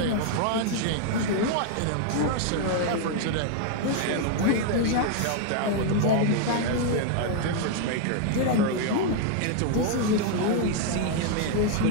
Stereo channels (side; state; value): both; different; correlation 0.00